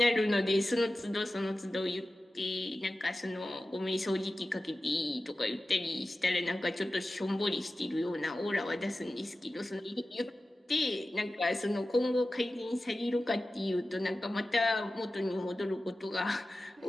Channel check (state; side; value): normal; both; correlation 0.95